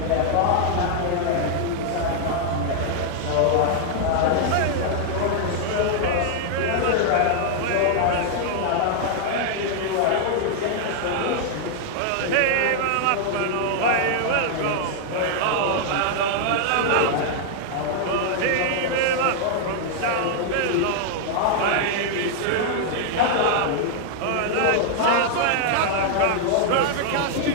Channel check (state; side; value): different; both; correlation -0.01